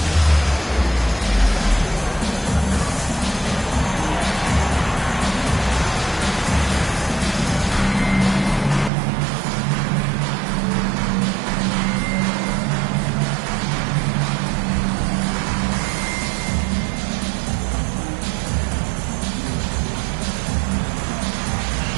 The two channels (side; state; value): left; drops out; at 8.9 s